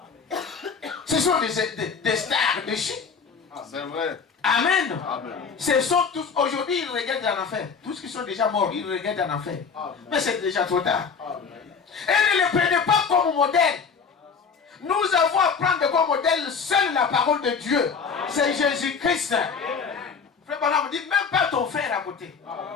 Ce sont des stars de Chine. C'est vrai. Amen. Amen. Ce sont tous, aujourd'hui, ils regardent en enfer. Tous qui sont déjà morts, ils regardent en enfer. Amen. Mais c'est déjà trop tard. Amen. Et ne les prenez pas comme modèle. Nous avons à prendre comme modèle seule la parole de Dieu. C'est Jésus-Christ. Frère Branham dit, même pas ton frère à côté.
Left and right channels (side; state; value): right; quieter; 5.8 dB